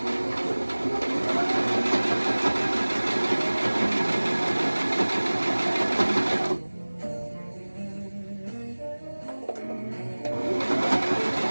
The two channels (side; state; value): both; inverted; correlation -1.00